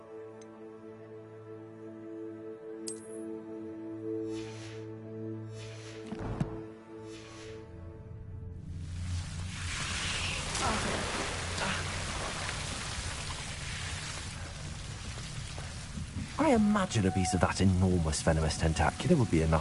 I imagine a piece of that enormous venomous tentacular would be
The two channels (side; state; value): both; identical; correlation 1.00